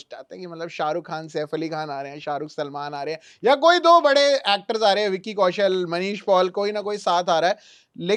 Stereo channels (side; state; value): both; identical; correlation 1.00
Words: आते हैं, कि मतलब शाहरुख खान, सैफ अली खान आ रहे हैं, शाहरुख सलमान आ रहे हैं, या कोई दो बड़े एक्टर्स आ रहे हैं, विक्की कौशल, मनीष पॉल, कोई ना कोई साथ आ रहा है।